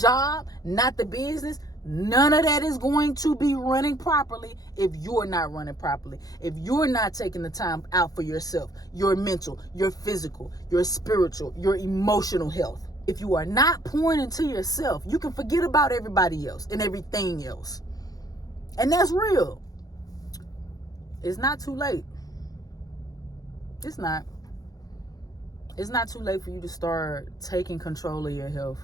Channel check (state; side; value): late; right; 0.18 ms